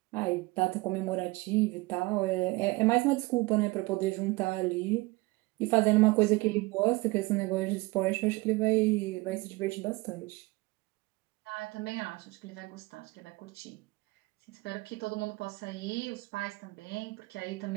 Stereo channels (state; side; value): quieter; left; 22.7 dB